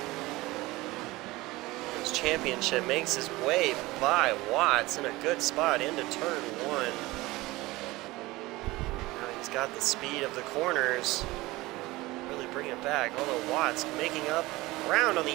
This championship makes his way by Watts in a good spot into turn 1. Now he's got the speed of the corners. Really bring it back. Although Watts making up ground on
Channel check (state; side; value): quieter; left; 20.1 dB